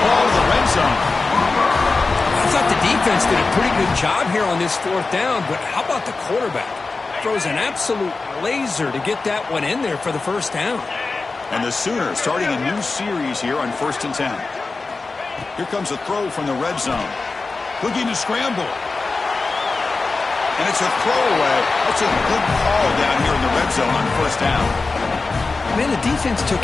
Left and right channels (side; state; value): right; quieter; 3.9 dB